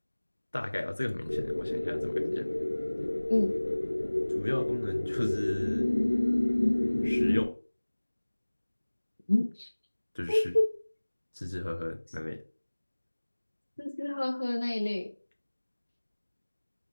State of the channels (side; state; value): both; inverted; correlation -1.00